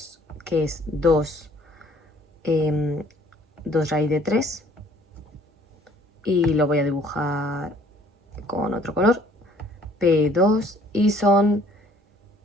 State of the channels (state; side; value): normal; both; correlation 0.57